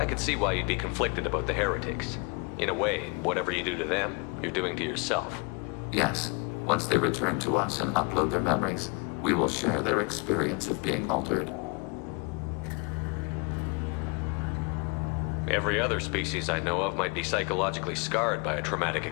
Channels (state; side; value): quieter; right; 32.0 dB